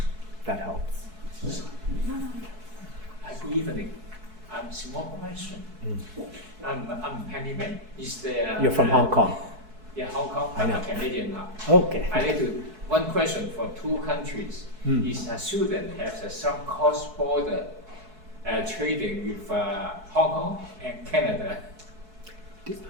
That helps. Good evening. Small question. I'm Penny May. You're from Hong Kong. Yeah, Hong Kong. I know. I'm a Canadian now. Okay. I need to one question for two countries. Is Sudan has some cross-border trading with Hong Kong and Canada?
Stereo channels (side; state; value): left; late; 4.6 ms